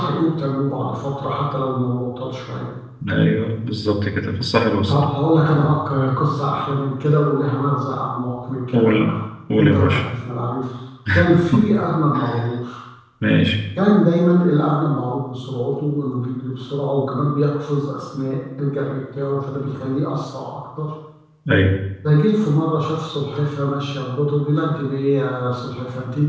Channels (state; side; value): identical; both; correlation 1.00